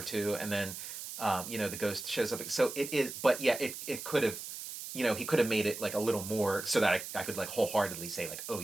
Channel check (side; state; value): right; noise; hiss, 9 dB below the sound